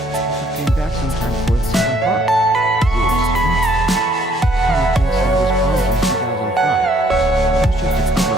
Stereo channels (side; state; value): both; normal; correlation 0.64